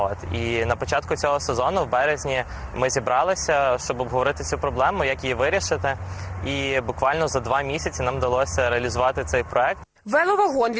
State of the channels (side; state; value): both; identical; correlation 1.00